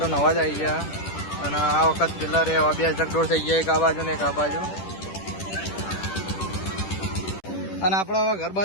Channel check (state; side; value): late; right; 10 ms